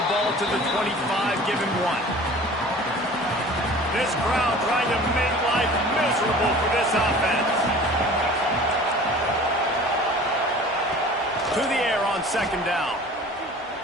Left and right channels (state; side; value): normal; both; correlation 0.43